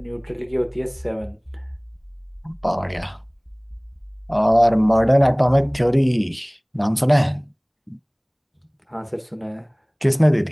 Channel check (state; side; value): identical; both; correlation 1.00